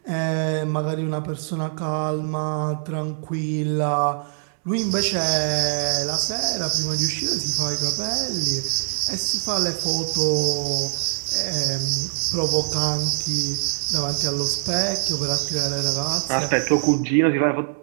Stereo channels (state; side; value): silent; left; digital silence